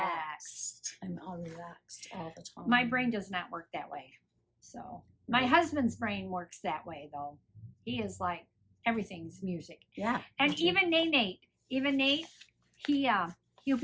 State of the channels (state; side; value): identical; both; correlation 1.00